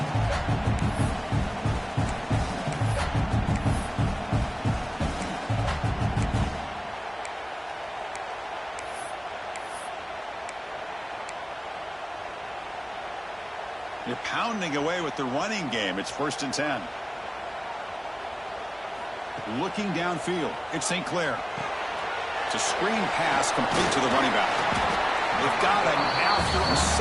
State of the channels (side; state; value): both; identical; correlation 1.00